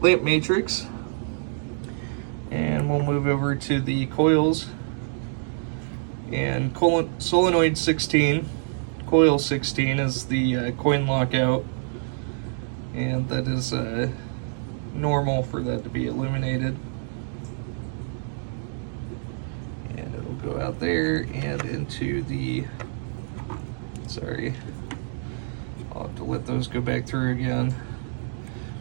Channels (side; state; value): left; silent; digital silence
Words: lamp matrix. And we'll move over to the coils. And solenoid 16, coil 16 is the coin lockout. And that is normal for that to be illuminated. And it'll go out there and into the, sorry, I'll have to let those go back through again.